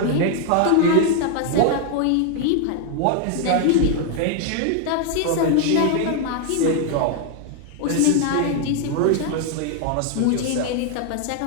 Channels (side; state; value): both; different; correlation 0.00